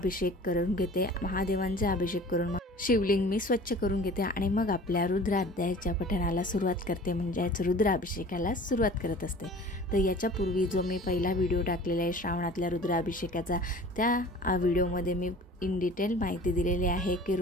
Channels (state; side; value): normal; both; correlation 0.44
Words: करून घेते. महादेवांचा अभिषेक करून शिवलिंग मी स्वच्छ करून घेते आणि मग आपल्या रुद्र अध्यायाच्या पठणाला सुरुवात करते, म्हणजेच रुद्राभिषेकाला सुरुवात करत असते. तर याच्यापूर्वी जो मी पहिला व्हिडिओ टाकलेला आहे श्रावणातल्या रुद्राभिषेकाचा, त्या व्हिडिओमध्ये मी इन डिटेल माहिती दिलेली आहे की